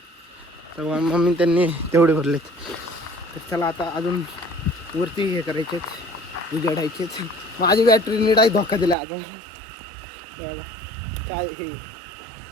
तर मम्मी त्यांनी तेवढे भरलेत. तर चला आता अजून वरती हे करायचेत, उजाडायचेच. माझी बॅटरी नीट धोका दिला अजून. बघा काय हे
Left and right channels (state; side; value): drops out; left; at 9.0 s